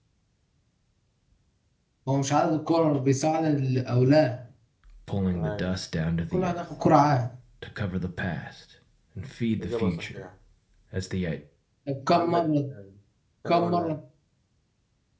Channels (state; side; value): identical; both; correlation 1.00